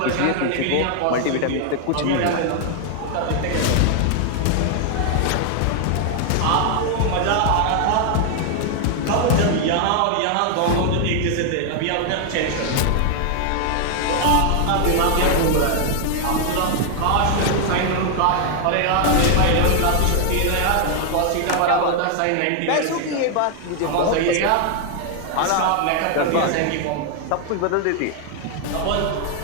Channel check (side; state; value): both; different; correlation 0.00